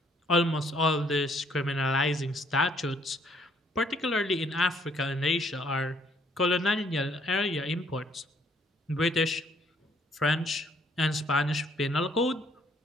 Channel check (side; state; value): both; normal; correlation 0.65